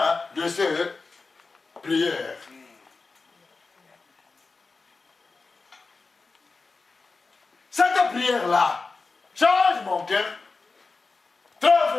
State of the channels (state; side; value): quieter; right; 4.0 dB